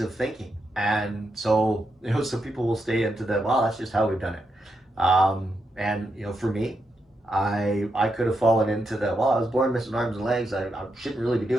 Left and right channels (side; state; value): both; normal; correlation 0.83